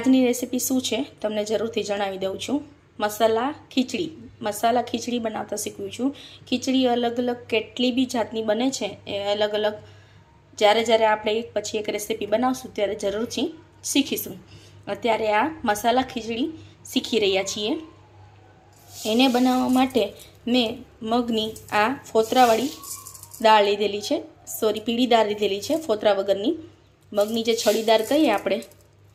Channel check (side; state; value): both; identical; correlation 1.00